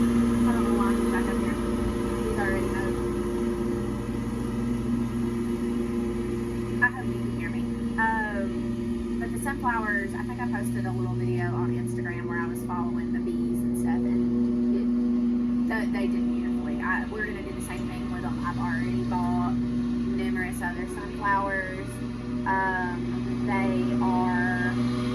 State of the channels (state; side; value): identical; both; correlation 1.00